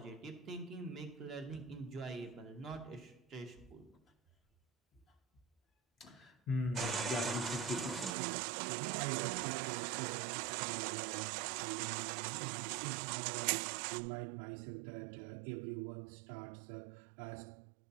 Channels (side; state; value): left; drops out; at 8.2 s